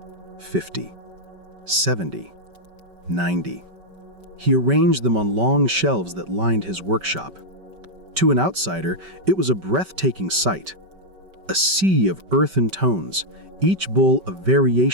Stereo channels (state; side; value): late; left; 5.2 ms